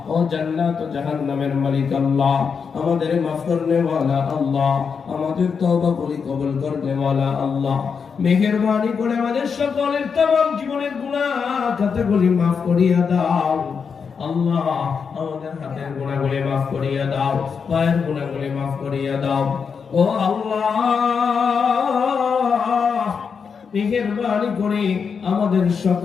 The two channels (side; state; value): right; quieter; 6.0 dB